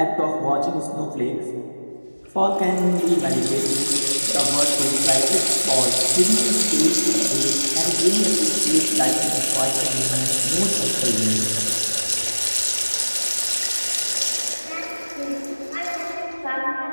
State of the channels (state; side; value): inverted; both; correlation -1.00